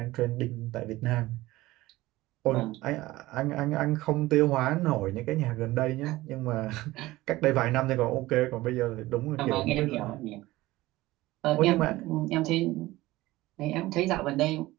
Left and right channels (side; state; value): left; quieter; 18.2 dB